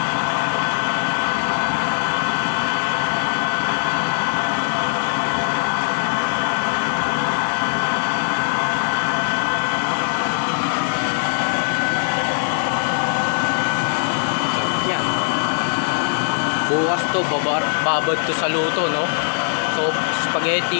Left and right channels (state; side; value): silent; right; digital silence